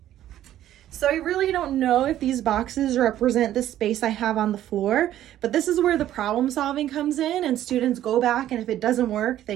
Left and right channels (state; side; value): quieter; left; 12.5 dB